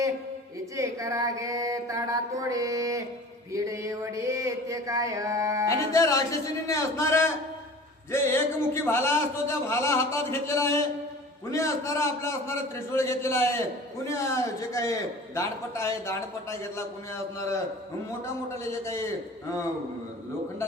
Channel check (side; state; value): both; normal; correlation 0.41